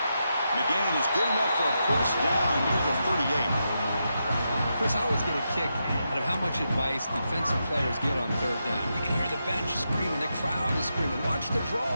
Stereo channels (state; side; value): inverted; both; correlation -0.85